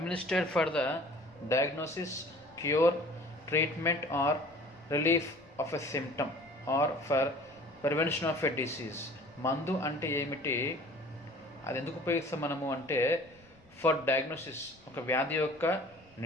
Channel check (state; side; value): noise; left; rumble, 29 dB below the sound